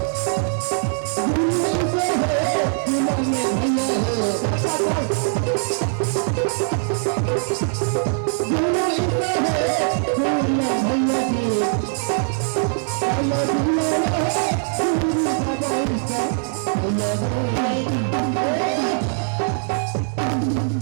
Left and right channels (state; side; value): silent; left; digital silence